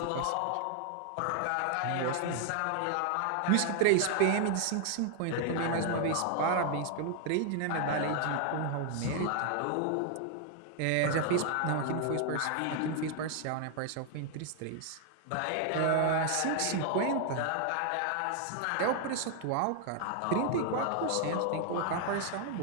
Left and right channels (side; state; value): both; different; correlation 0.00